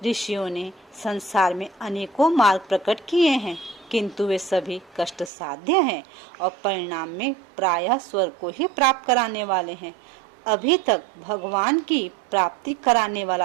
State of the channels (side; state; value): left; drops out; at 5.3 s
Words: ऋषियों ने संसार में अनेकों मार्ग प्रकट किए हैं, किंतु वे सभी कष्ट साध्य हैं और परिणाम में प्रायः स्वर्ग को ही प्राप्त कराने वाले हैं। अभी तक भगवान की प्राप्ति कराने